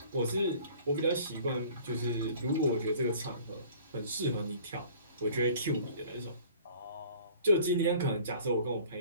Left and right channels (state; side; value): inverted; both; correlation -0.50